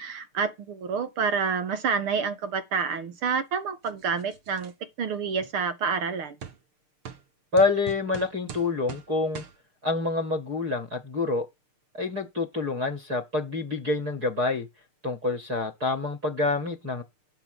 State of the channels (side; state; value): left; late; 6.6 ms